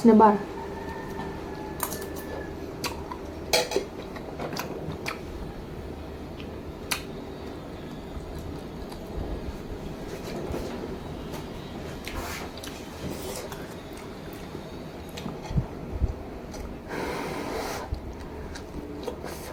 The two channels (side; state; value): both; identical; correlation 1.00